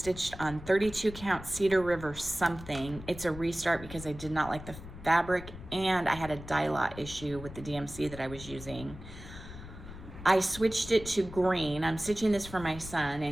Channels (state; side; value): noise; left; rumble, 13 dB below the sound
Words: on 32 count Cedar River something. It's a restart because I did not like the fabric, and I had a dye lot issue with the DMC that I was using. I switched it to green. I'm stitching this for my son,